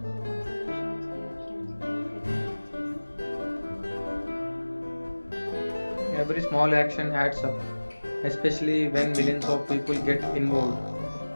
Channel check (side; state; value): both; inverted; correlation -1.00